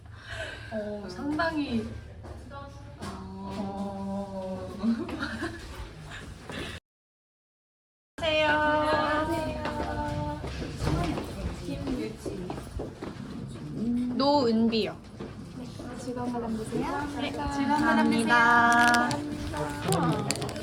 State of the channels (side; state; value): both; identical; correlation 1.00